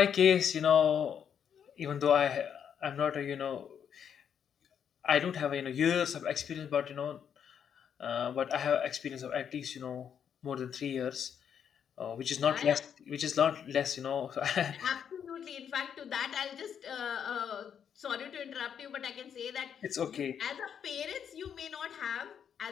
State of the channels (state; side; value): quieter; right; 8.1 dB